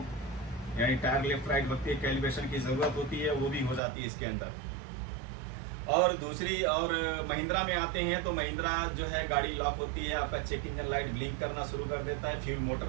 यानी टायर लेफ्ट राइट वक्त कैलिब्रेशन की ज़रूरत होती है, वो भी हो जाती है इसके अंदर। और दूसरी और महिंद्रा में आते हैं तो महिंद्रा जो है गाड़ी लॉक होती है, आपका चेक इंजन लाइट ब्लिंक करना शुरू कर देता है, फ्यूल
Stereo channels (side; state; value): left; drops out; at 3.8 s